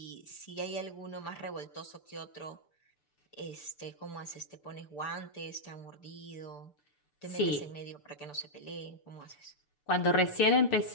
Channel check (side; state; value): right; late; 6.8 ms